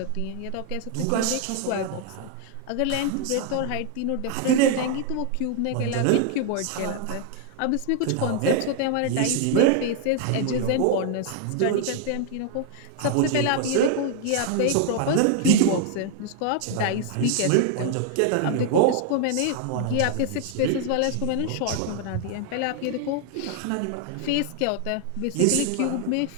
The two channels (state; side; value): different; both; correlation 0.00